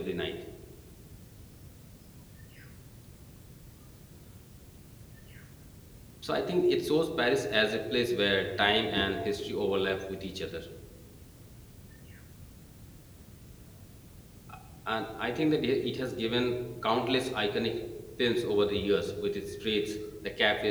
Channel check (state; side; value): identical; both; correlation 1.00